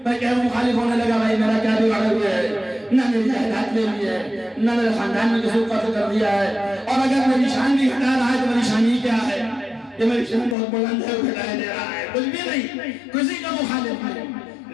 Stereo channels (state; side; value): drops out; right; at 10.6 s